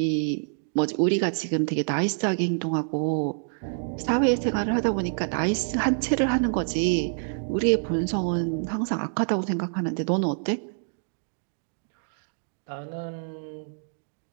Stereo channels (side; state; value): left; silent; digital silence